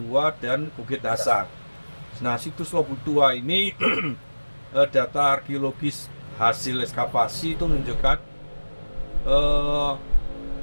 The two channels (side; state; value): both; inverted; correlation -1.00